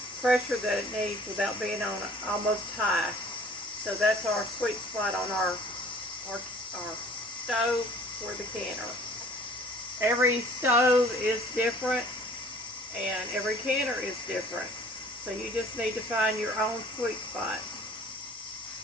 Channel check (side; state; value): both; normal; correlation 0.52